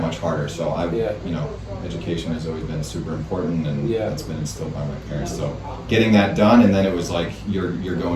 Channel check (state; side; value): identical; both; correlation 1.00